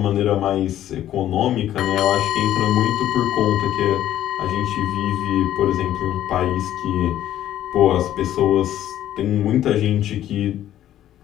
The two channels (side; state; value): right; quieter; 12.2 dB